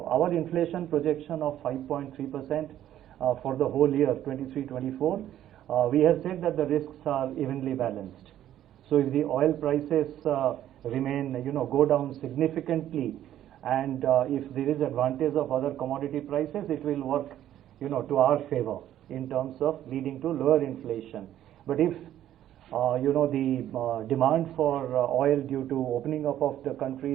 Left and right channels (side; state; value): left; quieter; 11.9 dB